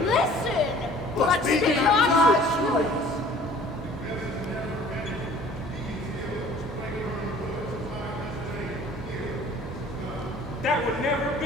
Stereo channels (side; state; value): both; normal; correlation 0.51